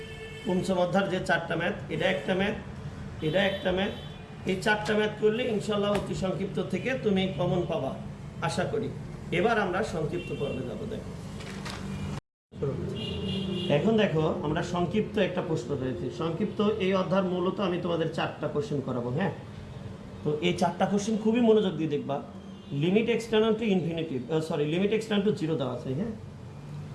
পঞ্চম অধ্যায়ের যে 4টা ম্যাথ, এটা একটা ম্যাথ, এটা একটা ম্যাথ, এই 4টা ম্যাথ করলে ইনশাল্লাহ অতি সংক্ষিপ্ত থেকে তুমি কমন পাবা আশা করি। এবার আমরা সংক্ষিপ্ত পর্বে যাব। দেখো এখন দেখো আমরা সংক্ষিপ্ত একটা প্রশ্ন রয়েছে। সংক্ষিপ্ত এই অধ্যায় মূলত আমি তোমাদের 4টা কোশ্চেন করাবো। হ্যাঁ, তো এই 4টা কোশ্চেন খুবই মনোযোগ দিয়ে দেখবা। Limit x tends to infinity, limit x tends to 0 দেওয়া আছে। হ্যাঁ,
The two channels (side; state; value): both; identical; correlation 1.00